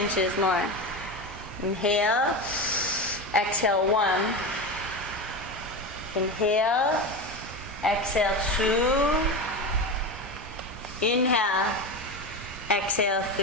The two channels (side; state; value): both; normal; correlation 0.21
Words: more. Inhale, exhale 1. Inhale, exhale 2. Inhale, exhale